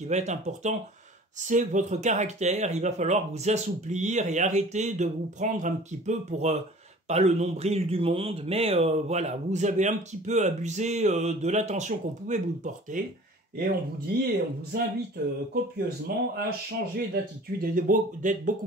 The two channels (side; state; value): both; normal; correlation 0.46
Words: va être important, c'est votre caractère. Il va falloir vous assouplir et arrêter de vous prendre un petit peu pour pas le nombril du monde, mais voilà, vous avez un petit peu abusé de l'attention qu'on pouvait vous porter, et on vous dit, et on vous invite copieusement à changer d'attitude et d'être